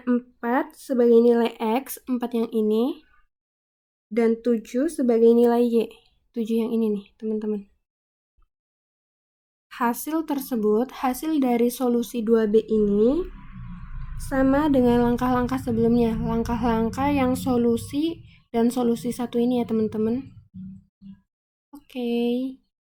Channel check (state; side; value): identical; both; correlation 1.00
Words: 4 sebagai nilai x, 4 yang ini, dan 7 sebagai nilai y, 7 yang ini nih teman-teman. Hasil tersebut, hasil dari solusi 2B ini sama dengan langkah-langkah sebelumnya, langkah-langkah yang solusi dan solusi satu ini ya teman-teman. Oke.